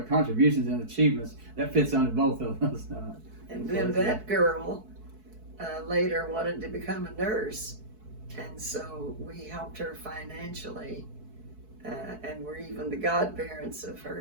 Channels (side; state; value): left; late; 4.6 ms